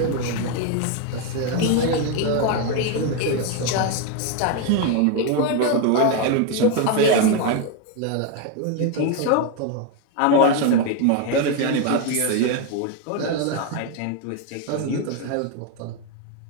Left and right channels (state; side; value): different; both; correlation 0.01